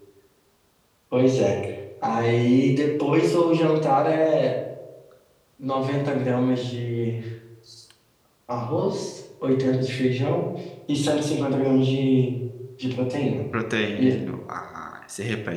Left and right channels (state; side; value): identical; both; correlation 1.00